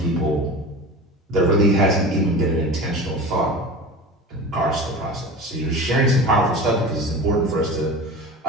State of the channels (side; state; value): both; normal; correlation 0.32